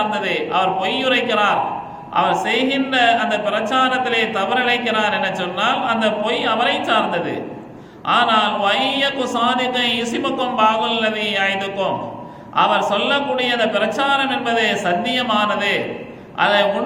அவர் பொய்யுரைக்கிறார், அவர் செய்கின்ற அந்த பிரச்சாரத்திலே தவறிழைக்கிறார் என சொன்னால் அந்த பொய் அவரை சார்ந்தது. ஆனால் வையகு சாதிக்க இசிமுக்கும் பாகுல்லதி ஆய்துக்கும், அவர் சொல்லக்கூடிய அந்த பிரச்சாரம் என்பது சத்தியமானது, அது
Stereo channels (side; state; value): both; identical; correlation 1.00